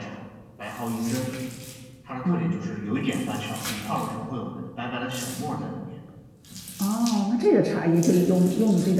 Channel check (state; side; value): identical; both; correlation 1.00